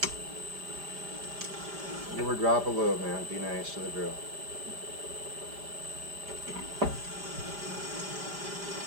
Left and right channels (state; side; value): late; left; 5.0 ms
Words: Give her a drop of lube, man. Be nice to the drill.